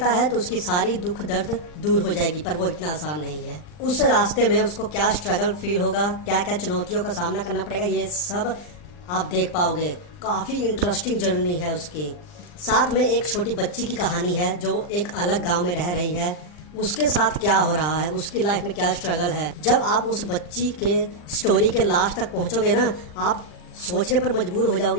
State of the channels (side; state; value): right; late; 39 ms